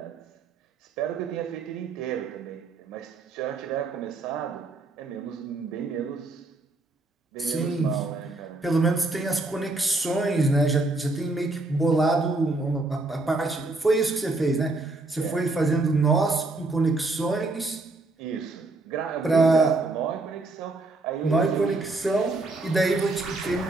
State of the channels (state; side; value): quieter; left; 3.2 dB